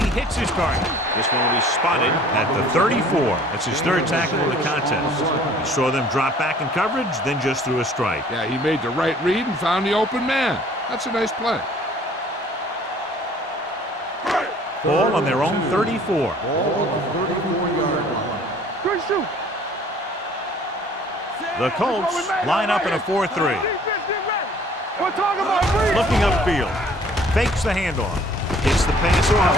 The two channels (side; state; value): both; normal; correlation 0.54